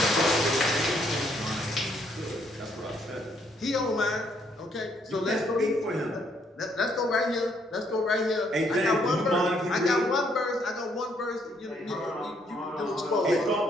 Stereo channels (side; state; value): both; normal; correlation 0.70